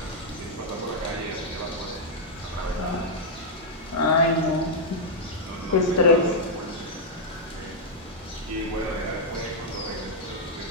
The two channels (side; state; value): both; normal; correlation -0.05